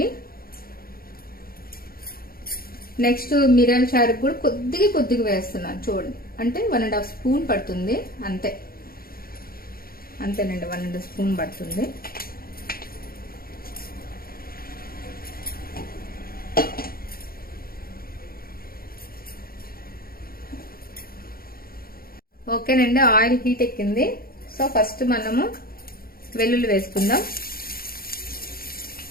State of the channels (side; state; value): right; late; 0.43 ms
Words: నెక్స్ట్ మిరియాల చారుకు కూడా కొద్దిగా వేస్తున్నాను, చూడండి. అంటే 1.5 స్పూన్ పడుతుంది, అంతేనండి, 1.5 స్పూన్ పడుతుంది. ఓకేనండి, ఆయిల్ హీట్ ఎక్కింది. సో ఫస్ట్ మనము వెల్లుల్లి వేసుకుందాం.